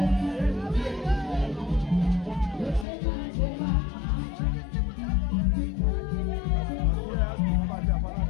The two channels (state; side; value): drops out; right; at 2.9 s